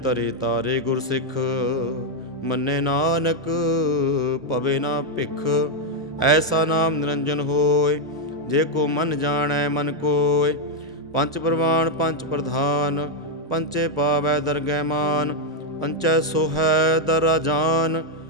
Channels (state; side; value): normal; both; correlation 0.01